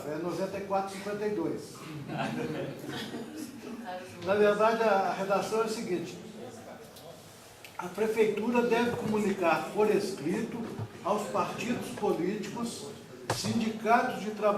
é 9452. Na verdade, a redação é a seguinte: a prefeitura deve comunicar por escrito aos partidos políticos, sindicatos de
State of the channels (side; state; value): both; identical; correlation 1.00